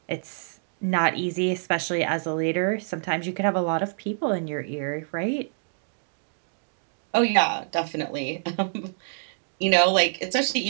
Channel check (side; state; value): left; silent; digital silence